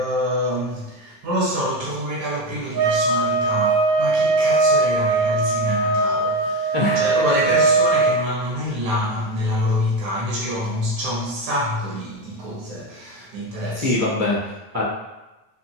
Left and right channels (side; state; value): left; late; 9.4 ms